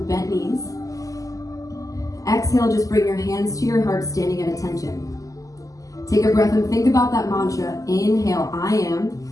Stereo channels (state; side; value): late; right; 0.17 ms